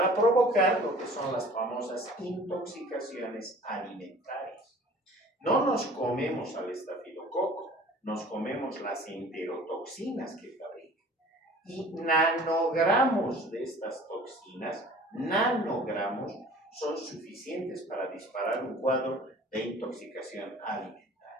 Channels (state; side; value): normal; both; correlation 0.47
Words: provocar lo que son las famosas intoxicaciones alimentarias. No nos comemos al estafilococo, nos comemos las enterotoxinas que fabrica. Y nanogramos de estas toxinas, nanogramos, son suficientes para disparar un cuadro de intoxicación alimentaria.